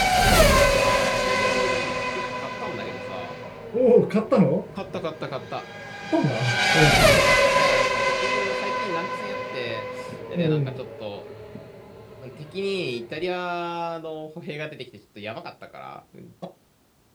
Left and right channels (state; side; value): identical; both; correlation 1.00